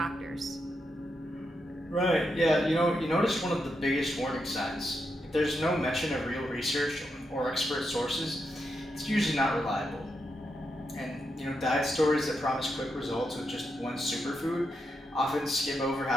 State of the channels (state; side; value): normal; both; correlation 0.84